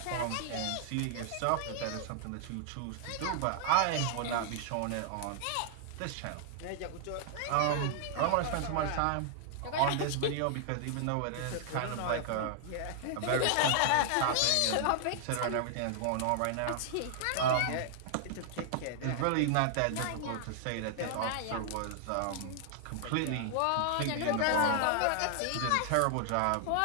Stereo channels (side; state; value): both; different; correlation 0.00